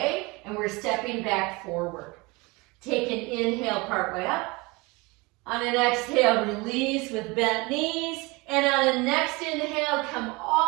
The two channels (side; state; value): left; quieter; 25.3 dB